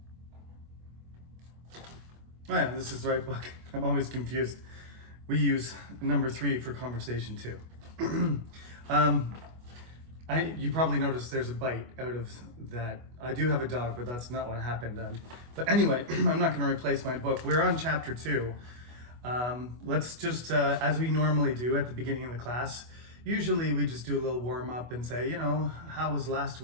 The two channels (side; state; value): left; late; 25 ms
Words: yeah, this is the right book. I'm always confused. We use number 3 for Conversation 2. You probably noticed there's a bite out of that. I do have a dog, but that's not what happened. But anyway, I'm not going to replace my book. We're on Chapter 2. Let's just, as we normally do at the beginning of the class, usually we just do a little warm up and say, how was last